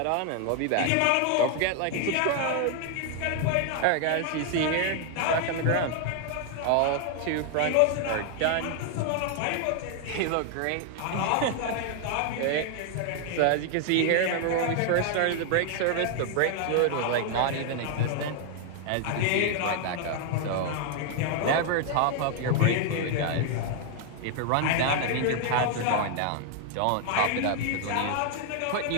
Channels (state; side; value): different; both; correlation 0.00